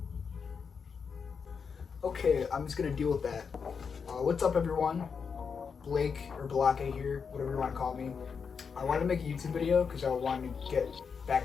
Okay, I'm just gonna deal with that. What's up, everyone? Blake or Balake here, whatever you want to call me. I wanted to make a YouTube video because I wanted to get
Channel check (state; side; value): quieter; right; 6.0 dB